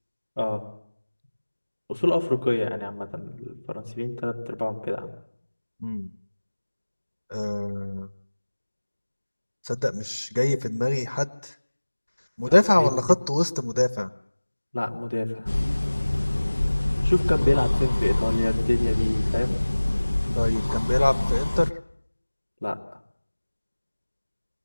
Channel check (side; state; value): both; inverted; correlation -1.00